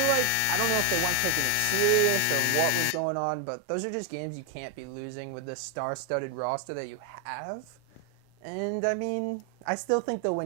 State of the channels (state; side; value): different; both; correlation 0.00